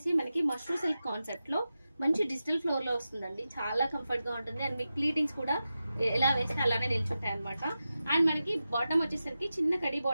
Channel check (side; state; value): both; inverted; correlation -0.92